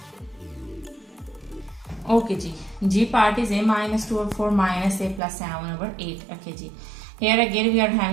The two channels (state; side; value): drops out; left; at 5.2 s